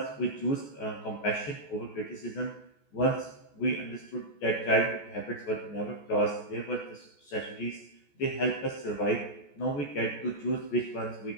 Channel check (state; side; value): late; right; 14 ms